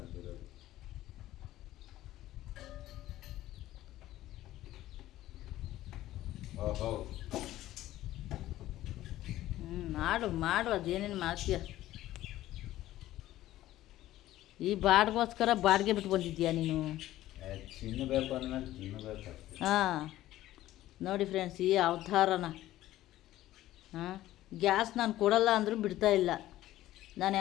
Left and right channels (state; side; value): quieter; right; 14.8 dB